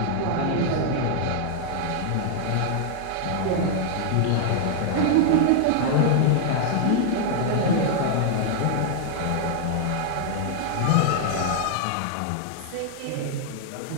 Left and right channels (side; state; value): both; different; correlation 0.00